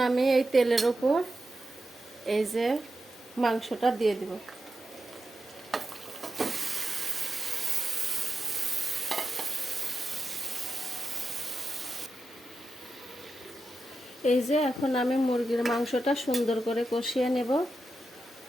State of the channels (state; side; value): normal; both; correlation 0.90